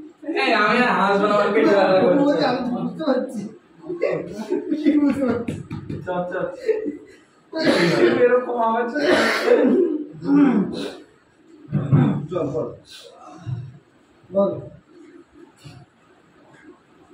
এই আমি আর হাসবো না আমার পেটে ব্যথা করছে আমি বুঝতে পারছি কি বুঝতে পারছি চল চল এরকম আওয়াজ চল বল বল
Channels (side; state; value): both; identical; correlation 1.00